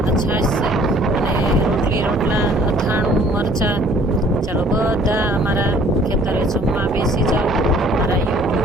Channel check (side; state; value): both; normal; correlation 0.56